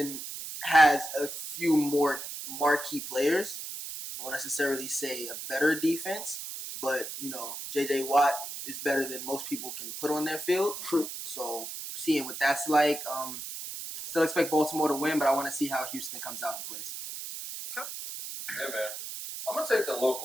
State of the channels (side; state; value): right; noise; hiss, 8 dB below the sound